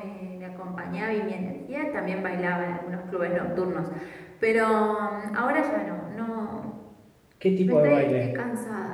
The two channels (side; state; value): both; identical; correlation 1.00